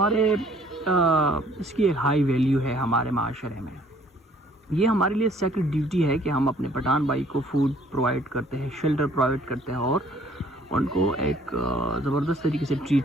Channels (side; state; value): both; normal; correlation 0.59